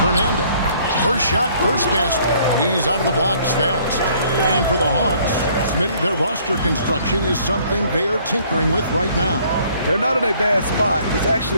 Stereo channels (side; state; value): both; inverted; correlation -0.60